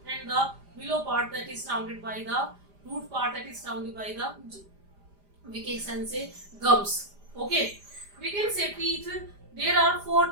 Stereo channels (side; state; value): left; late; 5.0 ms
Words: and the below part, that is surrounded by the root part, that is surrounded by the, we can say, gums. Okay, we can say teeth. There are four